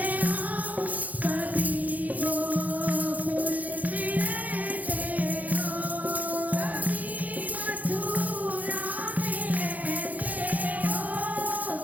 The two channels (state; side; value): late; left; 0.079 ms